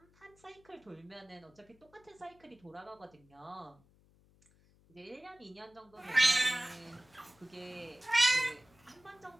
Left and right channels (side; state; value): left; noise; hum, 30 dB below the sound